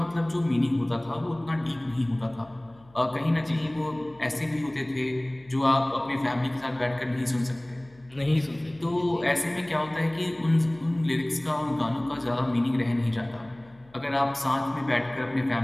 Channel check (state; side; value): noise; left; hum, 27 dB below the sound